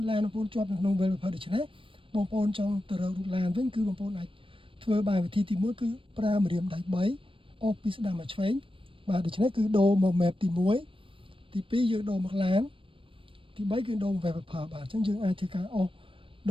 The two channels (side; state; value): left; late; 0.25 ms